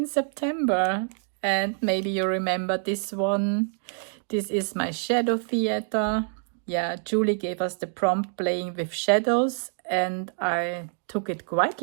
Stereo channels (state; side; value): silent; left; 61 dB below the other